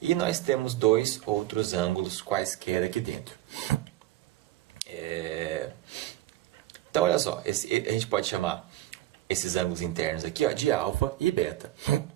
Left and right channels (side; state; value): left; quieter; 15.0 dB